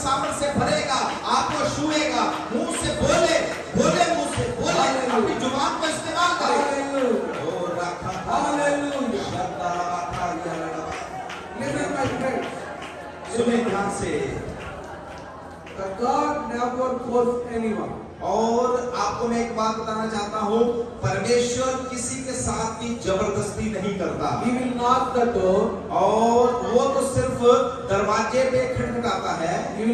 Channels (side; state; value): both; identical; correlation 1.00